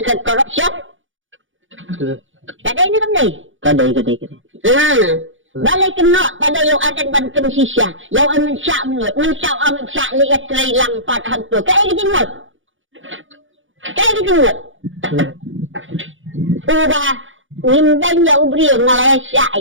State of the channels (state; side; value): late; left; 0.57 ms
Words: corruption kada ini kan ni kada Balai kena pada yang ada bantuan sisya. Yang Amit Syah menurut. Mencau Amit Syah lihat terhilang pada hantu. Kayak gitu menurut. Kayak gitu menurut. Ubah. Nimbang ya ubri Malaysia.